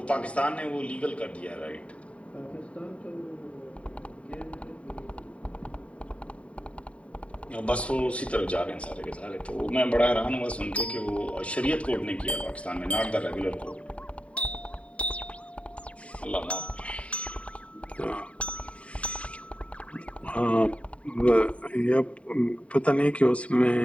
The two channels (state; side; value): late; right; 0.063 ms